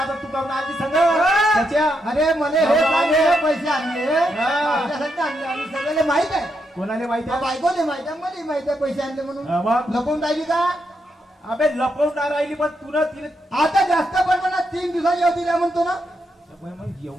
तू काऊन आलती संग त्याच्या? अरे मला हे बाबा, चांगले पैसे आणले, हा. माझ्यासाठी आणले आणि सगळ्याला माहित आहे. कोणाला माहिती आहे? बायकोले माहित आहे, मला माहित आहे पैसे आणले म्हणून. हा, मग? लपवून राहिली का? अबे लपवणार राहिली पण तुला तिने आता जास्त पण ना 3 दिवसाची अवधी द्या म्हणतो ना. मग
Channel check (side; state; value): both; normal; correlation 0.81